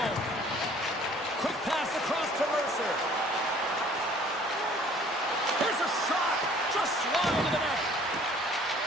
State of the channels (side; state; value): both; normal; correlation 0.54